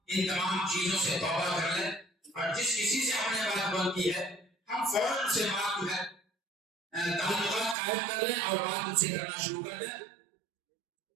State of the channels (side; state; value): left; drops out; at 7.8 s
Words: ان تمام چیزوں سے توبہ کر لیں اور جس کسی سے ہم نے بات بند کی ہے ہم فوراً سے بات جو ہے تعلقات قائم کر لیں اور بات ان سے کرنا شروع کر دیں.